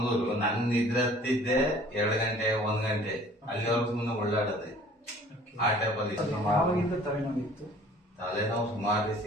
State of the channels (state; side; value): normal; both; correlation 0.51